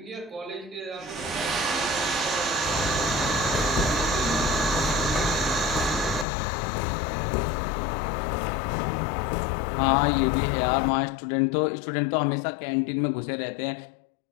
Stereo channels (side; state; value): right; drops out; at 6.2 s